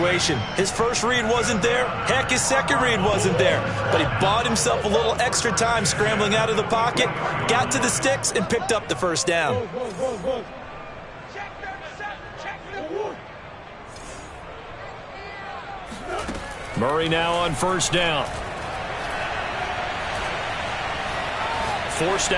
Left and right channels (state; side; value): identical; both; correlation 1.00